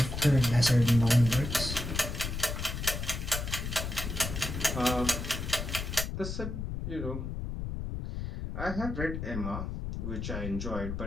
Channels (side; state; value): left; noise; rumble, 5 dB below the sound